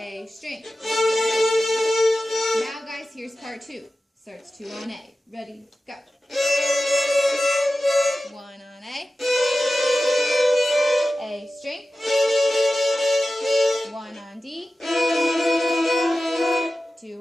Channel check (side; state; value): both; normal; correlation 0.94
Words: string. Now guys, here's part 2. Starts 2 on A. Ready, go. 1 on A. A string. 1 on D.